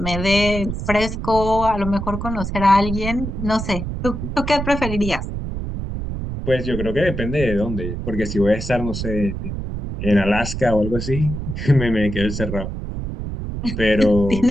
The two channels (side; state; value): right; noise; rumble, 5 dB below the sound